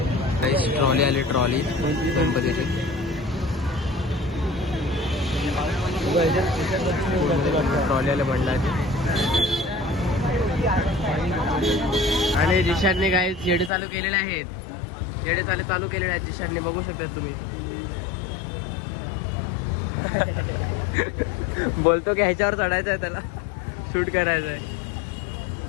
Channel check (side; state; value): right; drops out; at 13.7 s